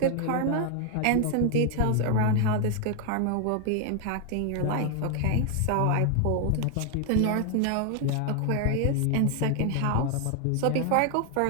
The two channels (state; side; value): different; both; correlation 0.00